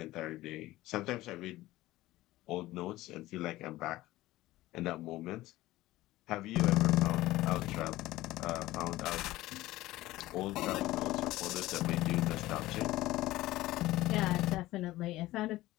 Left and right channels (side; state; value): right; quieter; 17.1 dB